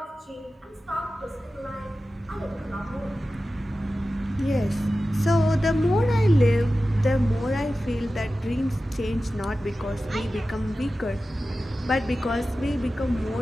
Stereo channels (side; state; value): both; normal; correlation 0.94